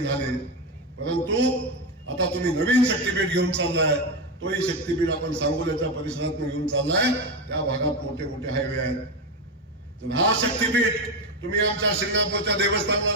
परंतु आता तुम्ही नवीन शक्तीपीठ घेऊन चाललाय, तोही शक्तीपीठ आपण सांगोल्याच्या परिसरात घेऊन चाललाय. त्या भागात मोठे मोठे हायवे आहेत. तर हा शक्तीपीठ तुम्ही आमच्या शिंगणापूरच्या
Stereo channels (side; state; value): both; normal; correlation 0.13